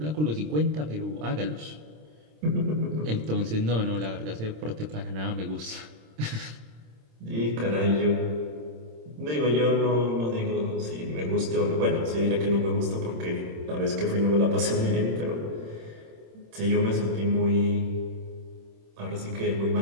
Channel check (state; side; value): late; left; 26 ms